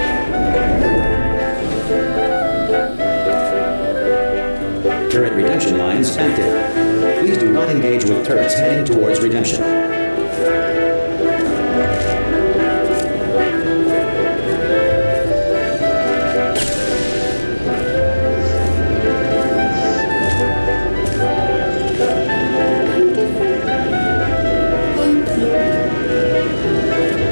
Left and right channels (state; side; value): inverted; both; correlation -1.00